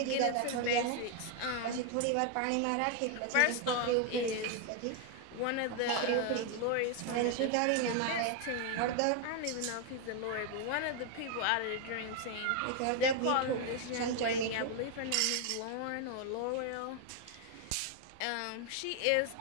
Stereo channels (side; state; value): both; different; correlation 0.01